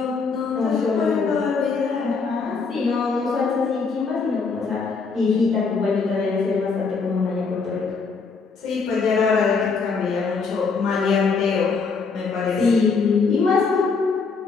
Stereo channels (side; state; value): right; quieter; 4.9 dB